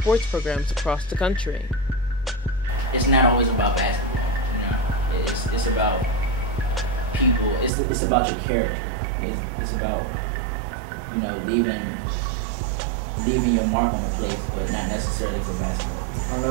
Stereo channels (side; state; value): left; drops out; at 7.7 s